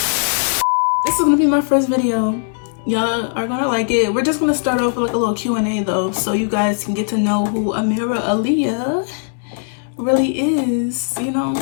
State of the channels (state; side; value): silent; right; digital silence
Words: is gonna be my first video. Y'all are gonna like it. We're just gonna start off with like a little Q&A though, so you guys can get to know who AmirahAlyiah really is, you know.